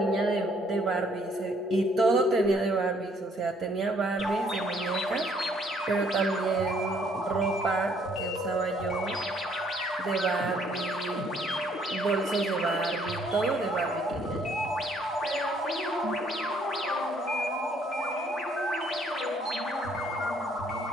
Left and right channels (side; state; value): both; normal; correlation 0.64